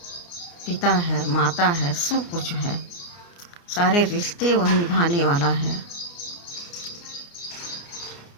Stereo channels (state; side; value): late; right; 29 ms